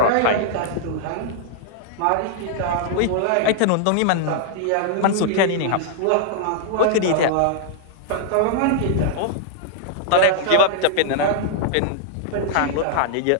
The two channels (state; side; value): different; both; correlation -0.01